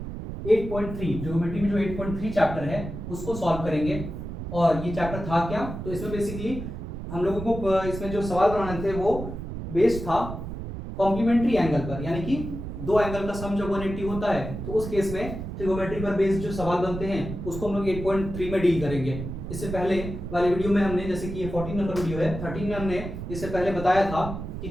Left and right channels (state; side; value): noise; right; rumble, 7 dB below the sound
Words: 8.3 ट्रिगोमेट्री में जो 8.3 चैप्टर है उसको सॉल्व करेंगे। और ये चैप्टर था क्या, तो इसमें बेसिकली हम लोगों को इसमें जो सवाल बनाने थे वो बेस्ड था कॉम्प्लीमेंट्री एंगल पर, यानी कि दो एंगल का सम जब 180 होता है तो उस केस में ट्रिगोमेट्री पर बेस्ड जो सवाल बनते हैं उसको हम लोग 8.3 में डील करेंगे। इससे पहले वाले वीडियो में हमने, जैसे कि ये 14 नंबर वीडियो है, 13 में हमने इससे पहले बताया था कि